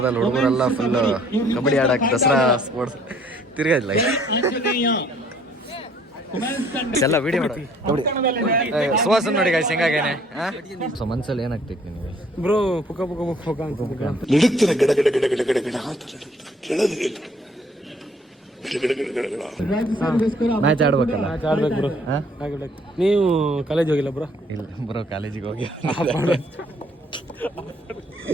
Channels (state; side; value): normal; both; correlation 0.61